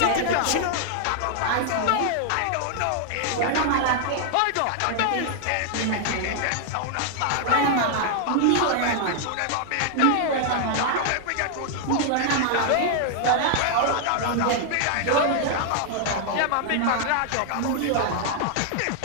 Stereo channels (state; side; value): different; both; correlation 0.00